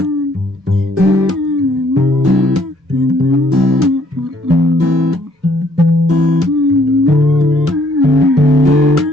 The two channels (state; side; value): normal; both; correlation 0.65